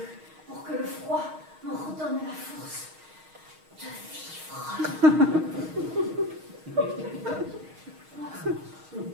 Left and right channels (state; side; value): late; left; 6.4 ms